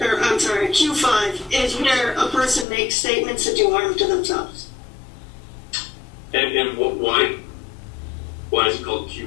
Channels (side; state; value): right; drops out; at 2.7 s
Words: is where a person makes statements that do harm to themselves. And why is it called